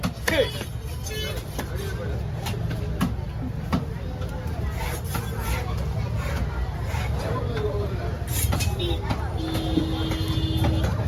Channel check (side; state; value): both; identical; correlation 1.00